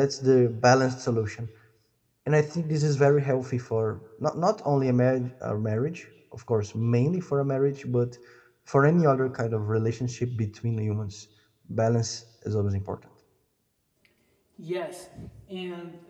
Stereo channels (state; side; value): identical; both; correlation 1.00